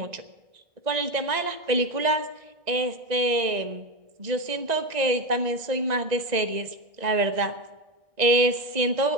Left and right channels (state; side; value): late; left; 1.9 ms